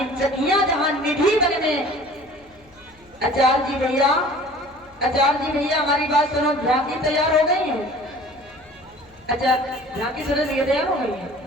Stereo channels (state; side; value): noise; left; hum, 29 dB below the sound